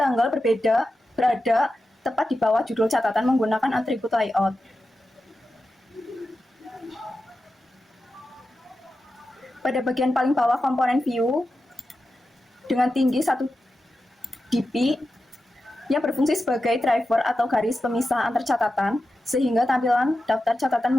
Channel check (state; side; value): normal; both; correlation 0.91